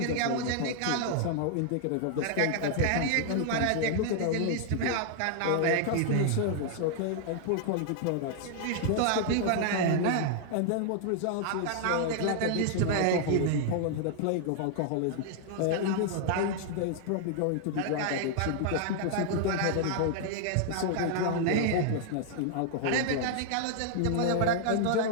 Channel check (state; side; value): different; both; correlation 0.00